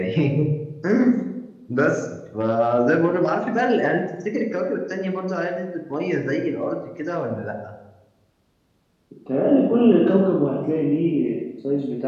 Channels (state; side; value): identical; both; correlation 1.00